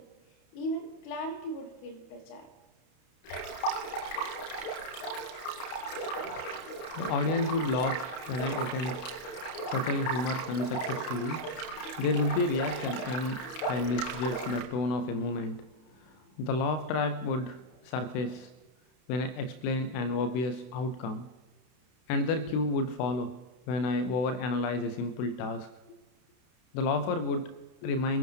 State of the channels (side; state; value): right; late; 31 ms